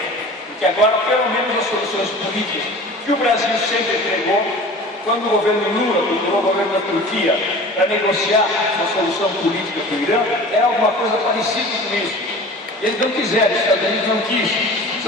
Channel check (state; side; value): normal; both; correlation 0.40